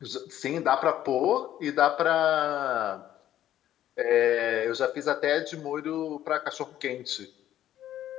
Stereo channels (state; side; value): quieter; right; 12.1 dB